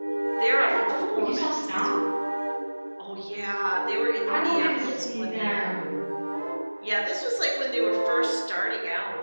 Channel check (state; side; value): inverted; both; correlation -1.00